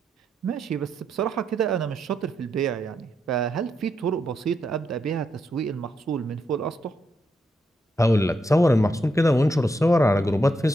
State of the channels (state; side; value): normal; both; correlation 0.81